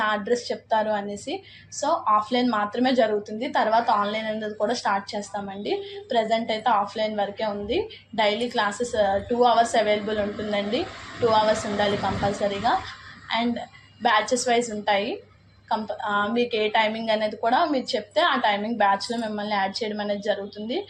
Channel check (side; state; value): both; identical; correlation 1.00